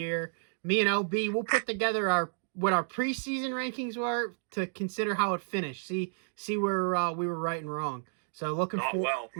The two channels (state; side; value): silent; left; digital silence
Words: Me and LB, we'll put together what our preseason rankings were to consider how it finished. See where we were right and wrong. So looking